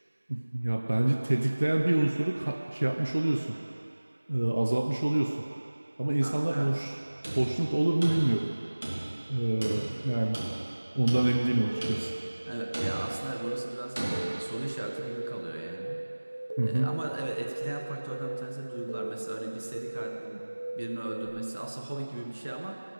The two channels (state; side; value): inverted; both; correlation -1.00